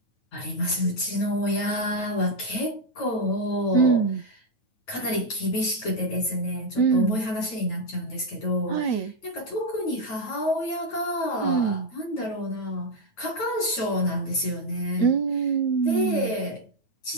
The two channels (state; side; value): late; right; 9.2 ms